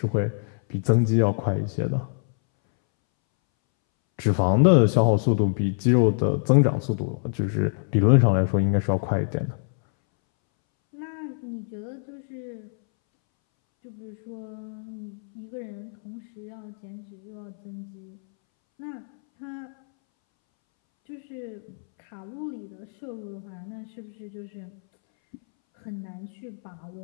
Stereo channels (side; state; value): right; silent; 61 dB below the other